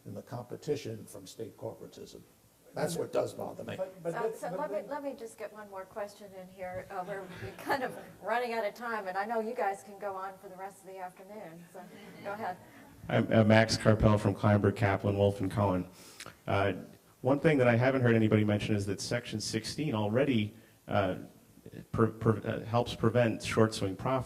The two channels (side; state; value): both; identical; correlation 1.00